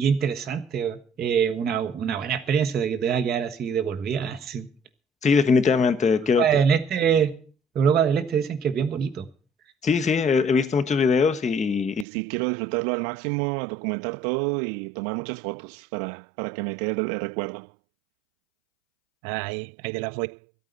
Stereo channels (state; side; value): drops out; left; at 12.1 s